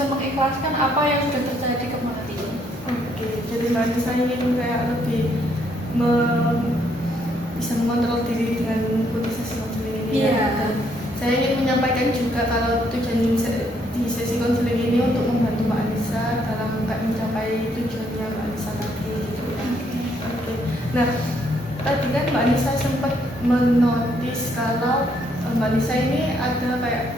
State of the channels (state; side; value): normal; both; correlation 0.70